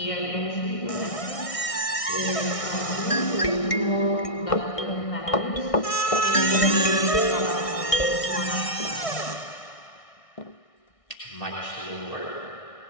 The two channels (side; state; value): right; late; 1.6 ms